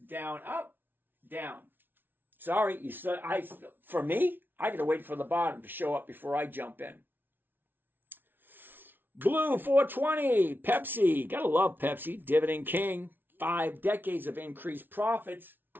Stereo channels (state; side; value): late; left; 0.097 ms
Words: down, up, down. Sorry, for me, I got to wait for the bottom to show up before I jump in. Blue 420, Pepsi. Gotta love Pepsi. Dividend King. 5 decades of increased profits.